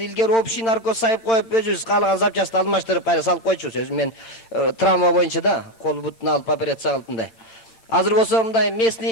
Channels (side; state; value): right; late; 8.9 ms